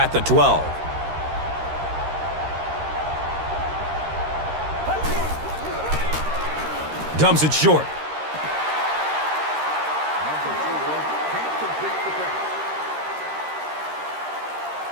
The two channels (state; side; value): late; left; 13 ms